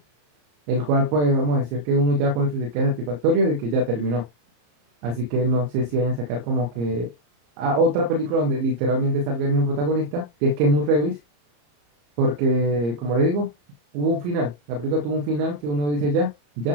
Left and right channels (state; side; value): late; left; 34 ms